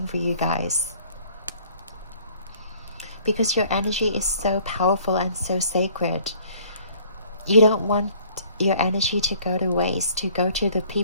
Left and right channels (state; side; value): inverted; both; correlation -0.55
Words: for you guys, because your energy is so powerful and so sacred. You don't want your energy to go to waste, to go to the